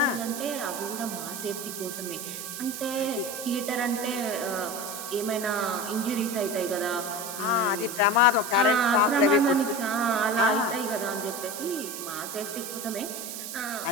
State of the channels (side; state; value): right; noise; hiss, 7 dB below the sound